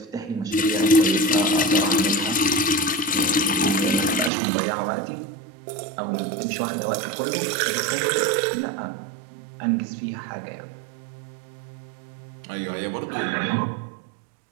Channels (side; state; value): left; drops out; at 4.3 s